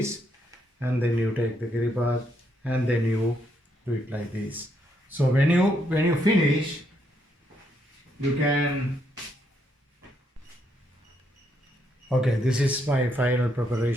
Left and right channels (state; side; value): normal; both; correlation 0.76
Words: and then you take the kiribat, and then you do it like this. So when you finish, you can. Okay, this is my final